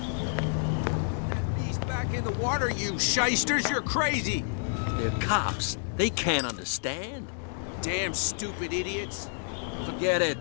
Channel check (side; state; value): right; silent; digital silence